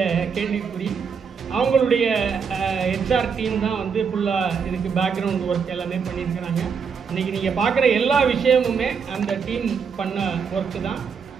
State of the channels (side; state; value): left; quieter; 6.2 dB